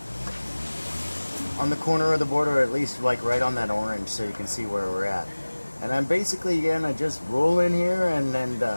corner of the board, or at least like right on that orange, so you can see where we're at. And I'm basically gonna just roll in here and then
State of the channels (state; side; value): inverted; both; correlation -1.00